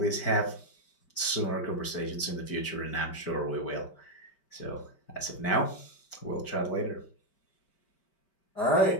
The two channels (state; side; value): late; right; 5.1 ms